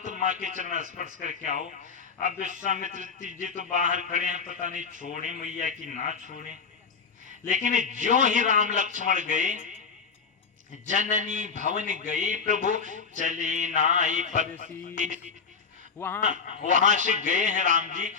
माँ के चरण स्पर्श करके आओ। अब विश्वामित्र जी तो बाहर खड़े हैं, पता नहीं छोड़े मैया की ना छोड़े। लेकिन जो ही राम लक्ष्मण गए, जननी भवन गए प्रभु चले नाई पद। वहां से गए हैं राम जी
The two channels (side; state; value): right; quieter; 5.6 dB